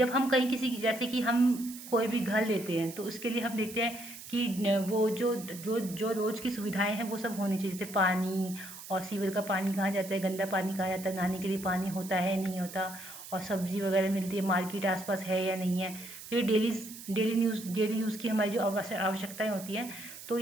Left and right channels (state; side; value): noise; right; hiss, 13 dB below the sound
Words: हम कहीं जैसे कि हम कोई भी घर लेते हैं तो उसके लिए हम देखते हैं कि वो जो रोज़ की सुविधाएं हैं वो सब होनी चाहिए, जैसे पानी और सीवर का पानी कहाँ जाता है, गंदा पानी कहाँ जाता है, नहाने के लिए पानी होता है नहीं होता, और सब्जी वगैरह मिलती है, मार्केट आसपास है या नहीं है। तो ये डेली यूज़ की हमारी जो आवश्यकताएं होती हैं, तो